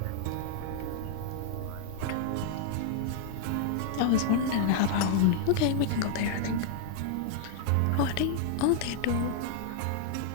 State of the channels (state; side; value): different; both; correlation -0.01